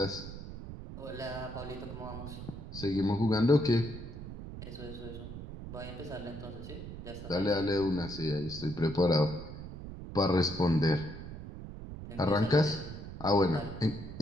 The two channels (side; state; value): right; noise; rumble, 10 dB below the sound